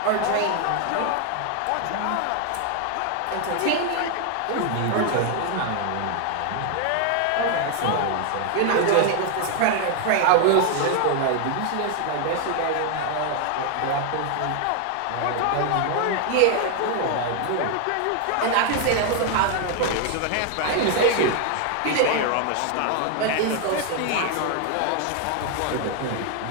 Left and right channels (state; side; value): different; both; correlation 0.00